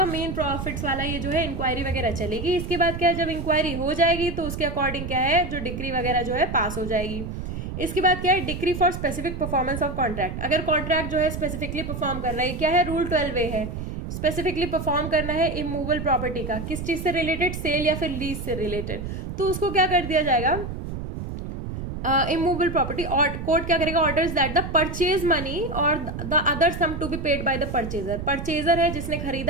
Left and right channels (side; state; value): right; noise; rumble, 6 dB below the sound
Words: मेन प्रॉफिट्स वाला ये जो है इंक्वायरी वगैरह चलेगी। इसके बाद क्या है, जब इंक्वायरी हो जाएगी तो उसके अकॉर्डिंग क्या है, जो डिक्री वगैरह जो है पास हो जाएगी। इसके बाद क्या है, decree for specific performance of contract. अगर कॉन्ट्रैक्ट जो है स्पेसिफिकली परफॉर्म कर रहा है, क्या है, रूल 12A है, स्पेसिफिकली परफॉर्म करना है इमूवेबल प्रॉपर्टी का, किस चीज से रिलेटेड, सेल या फिर लीज से रिलेटेड, तो उसको क्या कर दिया जाएगा, इमूवेबल प्रॉपर्टी। और कोर्ट क्या करेगा, orders that the purchase money or the other sum to be paid by the purchaser. Purchaser है जिसने